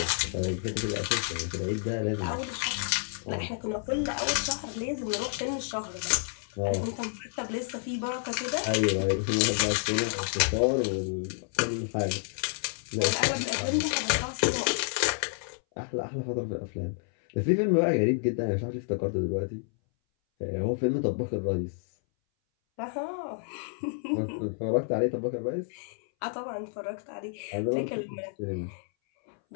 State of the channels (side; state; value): right; silent; 58 dB below the other